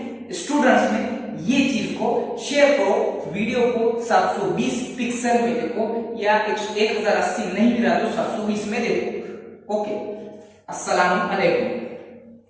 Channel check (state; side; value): identical; both; correlation 1.00